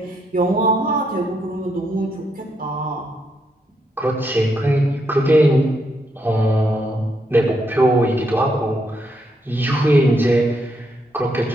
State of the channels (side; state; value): both; normal; correlation 0.78